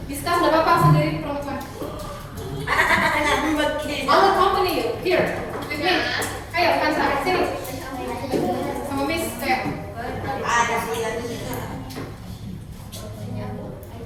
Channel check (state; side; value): identical; both; correlation 1.00